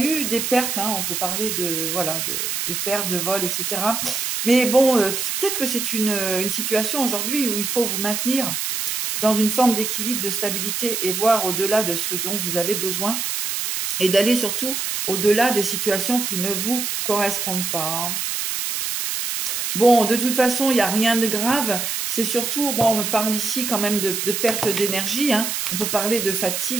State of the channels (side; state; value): right; noise; hiss, 2 dB below the sound